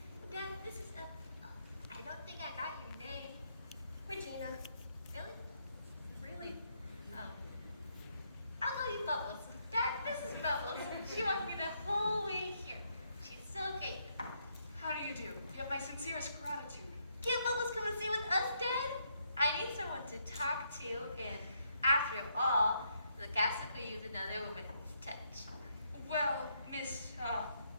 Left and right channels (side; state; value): both; inverted; correlation -0.75